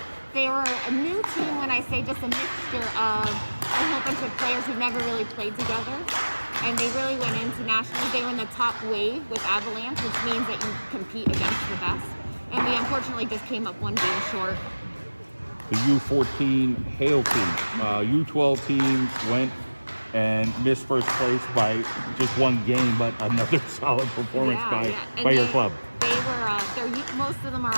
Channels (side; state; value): both; inverted; correlation -1.00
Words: They were a new team when I say just a mixture of a whole bunch of players who never really played together. And they really went into nationals. They were in the top wave with Avalanche, which means that you compete against the best. And we unfortunately just came up one game short. The U14 Hale team. U12 teams went and missed first place by just one game, but another solid performance by your club. They were, most of them are